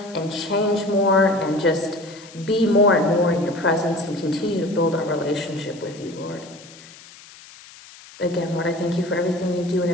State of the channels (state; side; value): noise; left; hiss, 20 dB below the sound